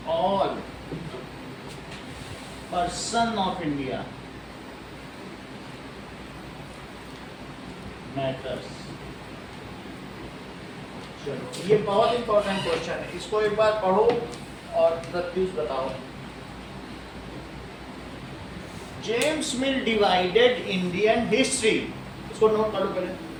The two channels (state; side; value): identical; both; correlation 1.00